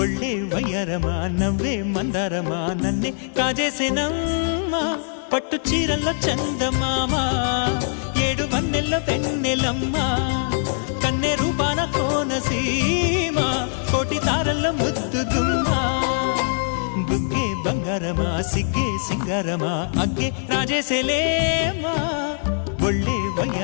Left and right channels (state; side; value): silent; right; digital silence